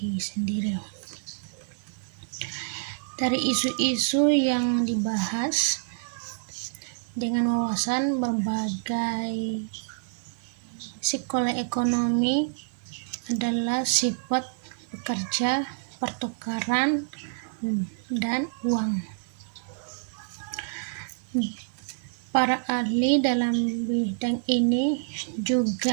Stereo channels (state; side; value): silent; left; digital silence